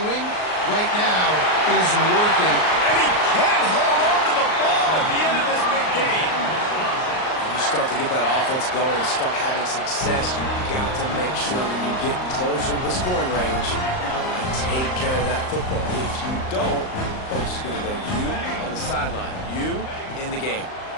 right now is working. And he can't hold on to the ball at the end of this big game. You start to get that offense going and start having success, you've got to make sure when you get closer to the scoring range, take care of that football. If you don't, coach is going to go you on the sideline, you in the game.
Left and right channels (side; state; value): right; late; 38 ms